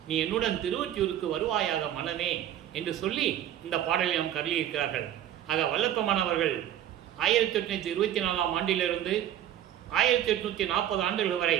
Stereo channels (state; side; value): quieter; left; 11.4 dB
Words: நீ என்னுடன் திருவொற்றியூருக்கு வருவாயாக மனமே என்று சொல்லி இந்த பாடலை நாம் கருளியிருக்கிறார்கள். ஆக வல்லப்பமானவர்கள் 1824ஆம் ஆண்டிலிருந்து 1840 ஆண்டுகள் வரை,